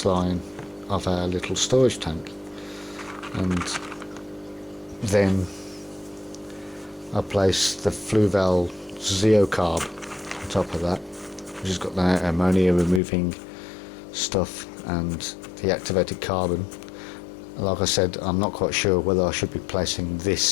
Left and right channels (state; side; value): drops out; right; at 13.0 s